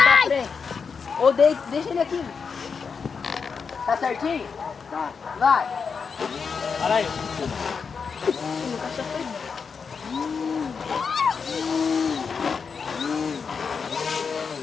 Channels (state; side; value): quieter; right; 5.7 dB